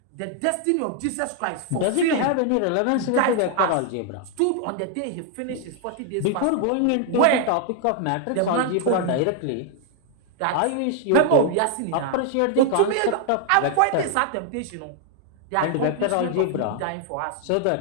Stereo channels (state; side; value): different; both; correlation 0.00